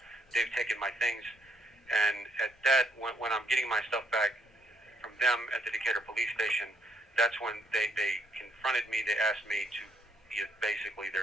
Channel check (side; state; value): both; normal; correlation 0.72